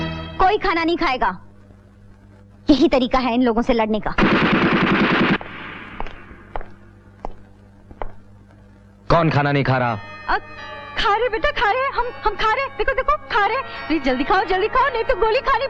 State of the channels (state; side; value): identical; both; correlation 1.00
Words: कोई खाना नहीं खाएगा। यही तरीका है इन लोगों से लड़ने का। कौन खाना नहीं खा रहा? खा रहे बेटा, खा रहे। हम खा रहे। देखो देखो, खा रहे। प्लीज जल्दी खाओ, नहीं तो गोली खानी